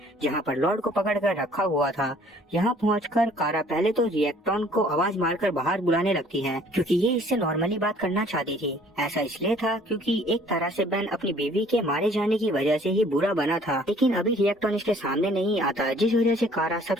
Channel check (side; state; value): both; normal; correlation 0.56